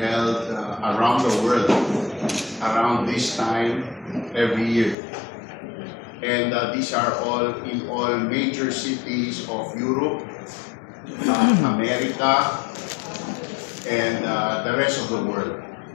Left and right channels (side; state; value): right; drops out; at 5.0 s